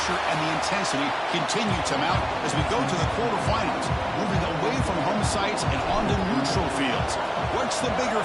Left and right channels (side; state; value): both; identical; correlation 1.00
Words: and the intensity continue to mount as we go to the quarterfinals, moving away from home sites and onto neutral fields. What's the bigger